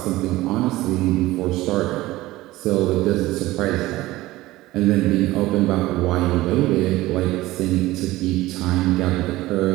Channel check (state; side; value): quieter; left; 17.8 dB